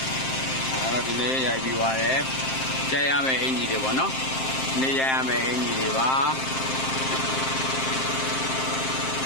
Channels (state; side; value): late; right; 7.6 ms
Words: ဒီနေ့ရိုက်ပြီးသွားတယ်ကြိုက်ရမယ့်အင်ကြီးတွေပေါ့နော်နေရိုက်ရမယ့်အင်ကြီးတွေပါ